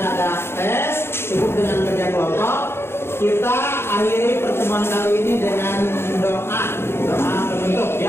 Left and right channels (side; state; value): right; late; 0.12 ms